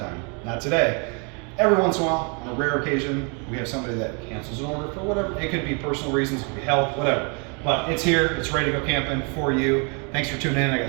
Not today. Every once in a while, on a rare occasion, we have somebody that cancels an order for whatever. It could be personal reasons, it could be health, whatever. But it's here, it's ready to go camping for you. Thanks for tuning in. I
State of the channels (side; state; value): left; quieter; 35.1 dB